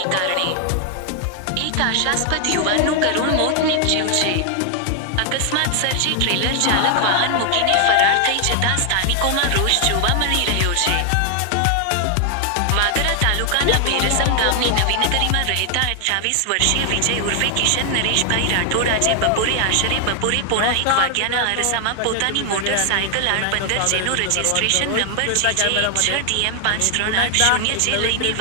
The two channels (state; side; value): different; both; correlation 0.00